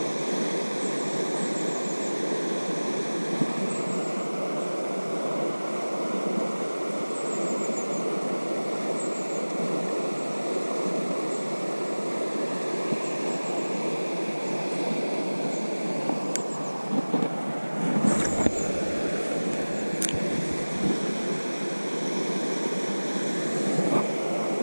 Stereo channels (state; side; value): inverted; both; correlation -1.00